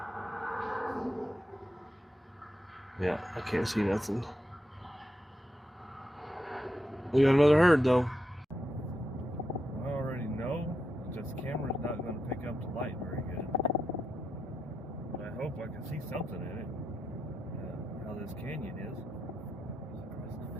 Yeah, I can't see nothing. We got another herd, though. I already know that this camera's not going to pick up the light very good. But I hope I can see something in it. How this canyon is.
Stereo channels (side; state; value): both; normal; correlation 0.85